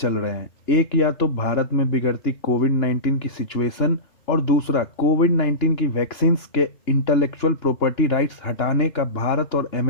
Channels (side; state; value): right; late; 2.9 ms